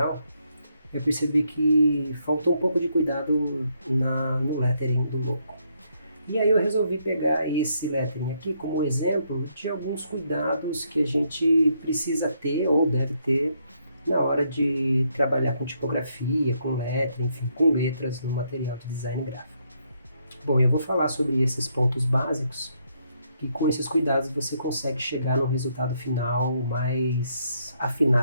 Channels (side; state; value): both; inverted; correlation -0.74